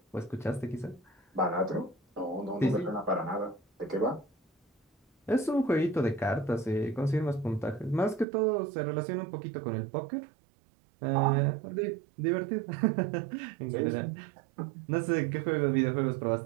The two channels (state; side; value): drops out; left; at 8.2 s